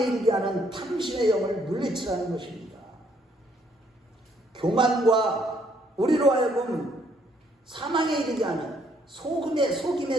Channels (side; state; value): both; normal; correlation 0.68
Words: 하는 탐심의 영을 물리치라는 것입니다. 교만과 우리로 하여금 사망에 이르게 하는